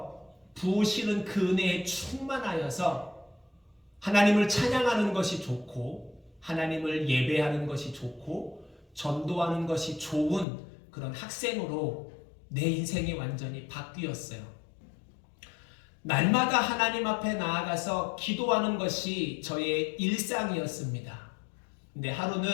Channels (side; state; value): right; drops out; at 10.5 s